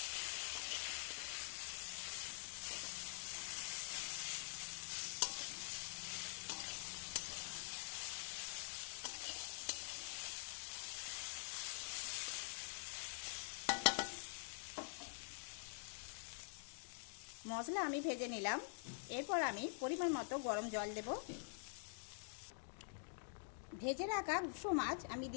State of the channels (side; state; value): right; silent; digital silence